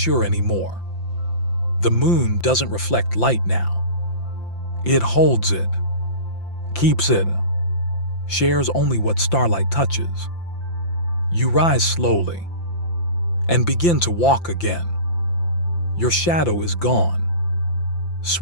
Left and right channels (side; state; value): right; late; 5.8 ms